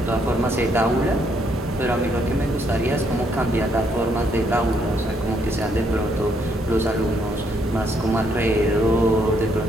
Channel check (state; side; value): normal; both; correlation 0.72